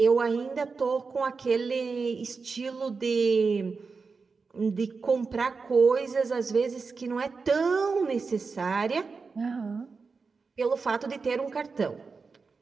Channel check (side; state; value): left; quieter; 4.7 dB